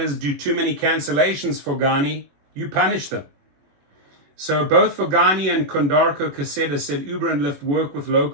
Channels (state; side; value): late; left; 21 ms